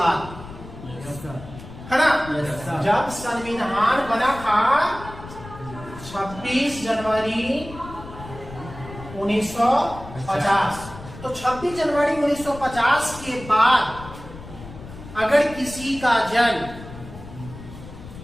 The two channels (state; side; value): noise; left; rumble, 15 dB below the sound